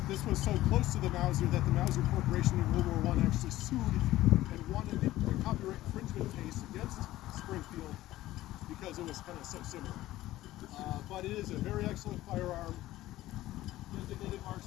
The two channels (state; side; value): quieter; right; 15.7 dB